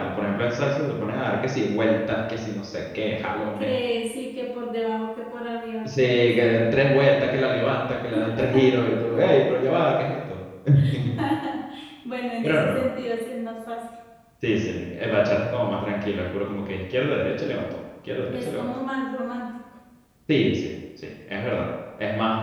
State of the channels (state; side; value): identical; both; correlation 1.00